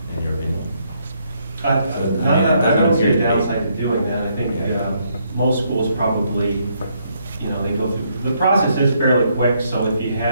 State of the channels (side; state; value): both; inverted; correlation -0.73